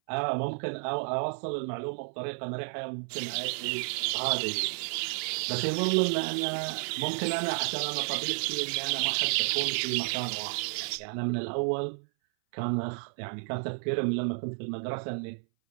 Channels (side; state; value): left; silent; 57 dB below the other